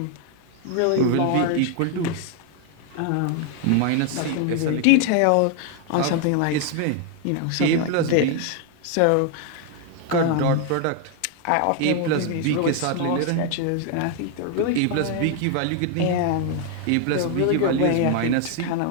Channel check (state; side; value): different; both; correlation 0.00